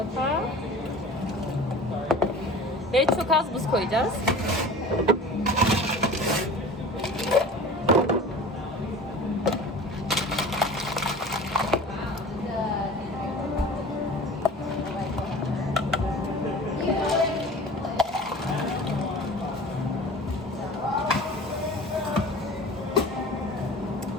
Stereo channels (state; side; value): normal; both; correlation 0.40